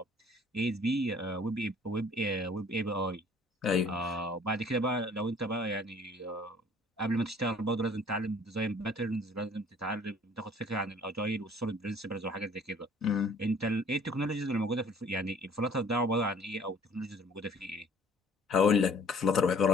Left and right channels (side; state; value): both; normal; correlation 0.54